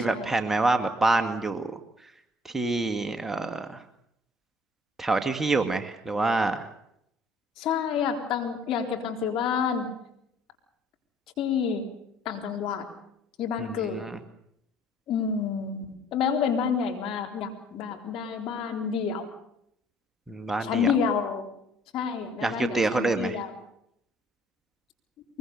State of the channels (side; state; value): both; normal; correlation 0.58